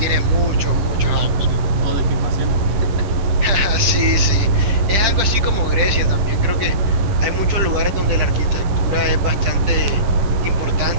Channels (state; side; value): late; left; 10 ms